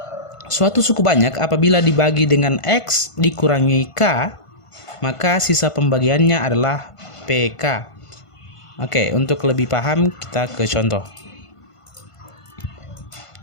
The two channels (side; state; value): right; late; 1.5 ms